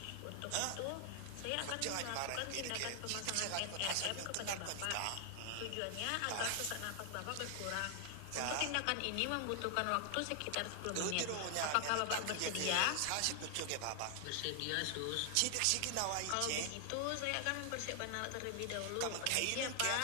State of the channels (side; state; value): both; different; correlation 0.00